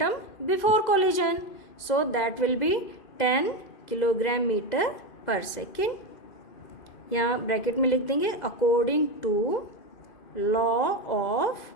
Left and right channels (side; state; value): right; late; 2.0 ms